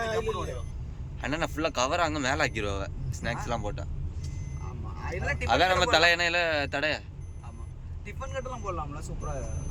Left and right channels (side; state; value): both; identical; correlation 1.00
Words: அண்ணா ஃபுல்லா கவர் அங்க மேல ஆக்கிடுவாங்க ஸ்நாக்ஸ் எல்லாம் போட்டா. அதான் நம்ம தலை எண்ணெயில தடைய. டிபன் கட்டெல்லாம் போடலாம்ல சூப்பரா.